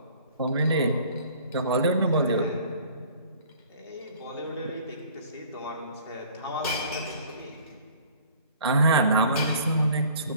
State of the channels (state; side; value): inverted; both; correlation -0.52